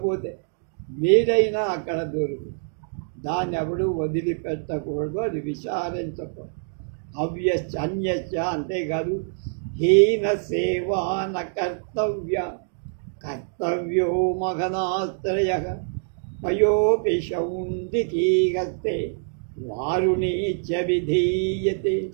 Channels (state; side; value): silent; left; digital silence